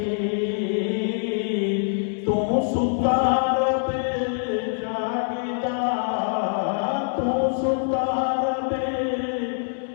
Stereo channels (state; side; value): silent; right; digital silence